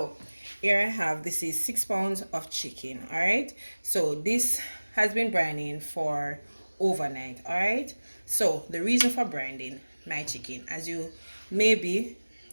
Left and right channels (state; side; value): inverted; both; correlation -1.00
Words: here I have, this is 6 pounds of chicken. Alright, so this has been brining for overnight. Alright, so the reason for brining my chicken, as you may be